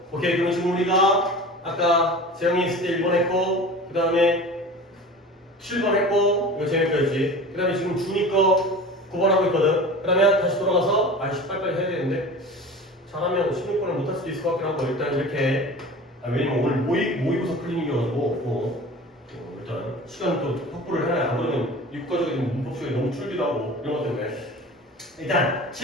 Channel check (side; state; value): both; normal; correlation 0.36